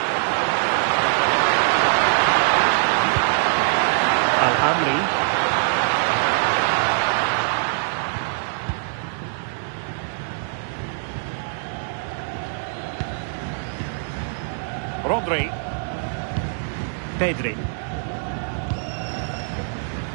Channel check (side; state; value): left; silent; 63 dB below the other